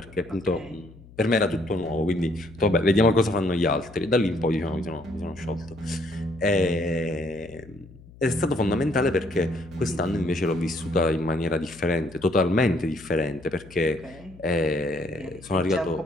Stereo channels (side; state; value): left; noise; hum, 21 dB below the sound